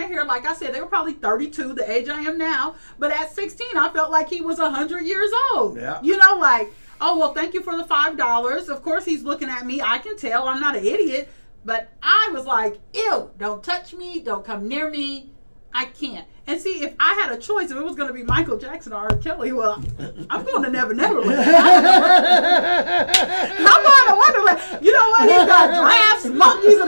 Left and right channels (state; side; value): inverted; both; correlation -1.00